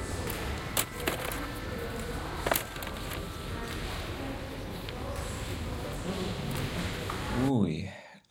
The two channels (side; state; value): both; identical; correlation 1.00